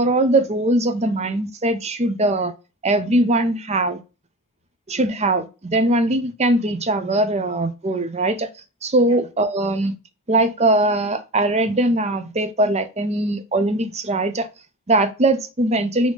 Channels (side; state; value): both; normal; correlation 0.30